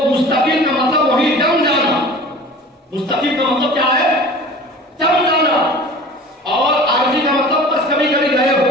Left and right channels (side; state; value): both; normal; correlation 0.41